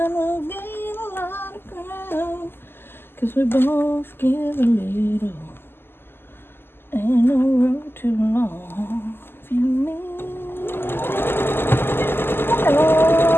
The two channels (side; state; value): right; late; 0.11 ms